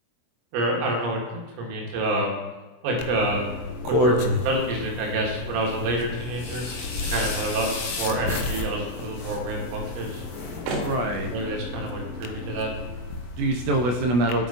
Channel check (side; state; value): left; late; 24 ms